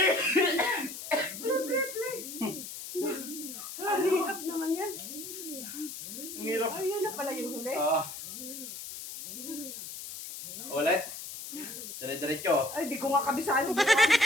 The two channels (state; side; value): noise; left; hiss, 9 dB below the sound